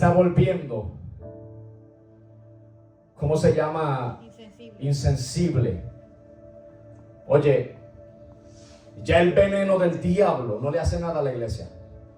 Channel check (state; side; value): identical; both; correlation 1.00